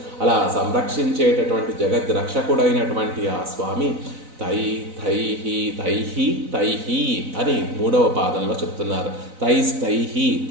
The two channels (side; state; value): left; late; 4.0 ms